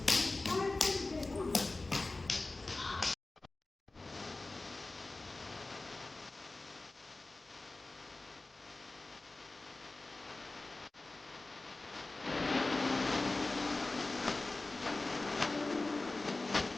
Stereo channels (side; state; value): right; quieter; 3.2 dB